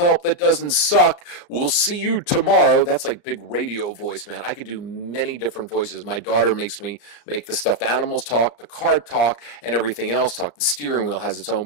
that doesn't suck, we'll see you tomorrow. That's like big radio voice, man. I could do many different voices. My daughter makes me make the stuffed animals talk, the car talk, and everything else talk. The steering wheel has its own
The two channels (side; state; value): right; late; 34 ms